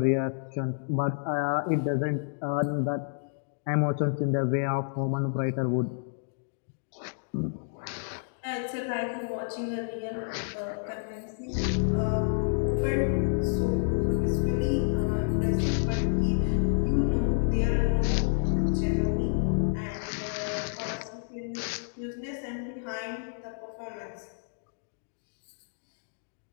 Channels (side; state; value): right; silent; digital silence